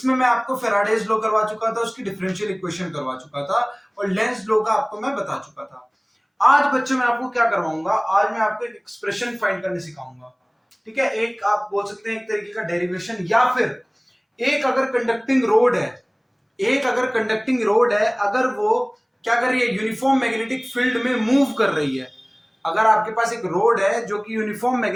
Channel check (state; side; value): identical; both; correlation 1.00